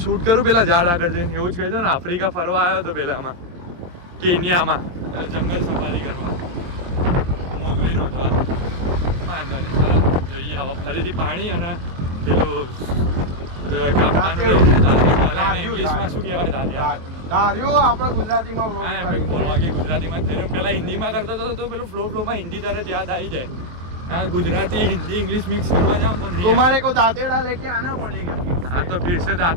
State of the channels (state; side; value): late; left; 23 ms